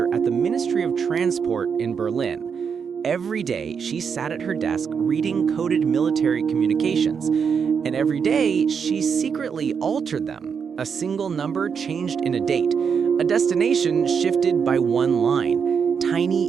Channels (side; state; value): left; quieter; 6.5 dB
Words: at the Ministry of Transport in Berlin. Every day, she sat at her desk reading coded military communications, and every day, she secretly altered them. A single number changed in a date, a destination shifted by one line.